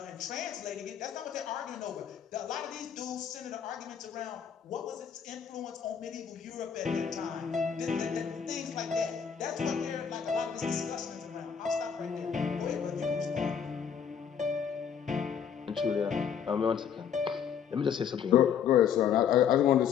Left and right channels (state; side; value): quieter; right; 7.8 dB